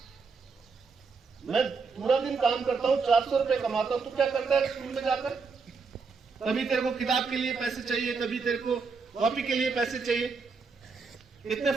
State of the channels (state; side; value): quieter; left; 4.9 dB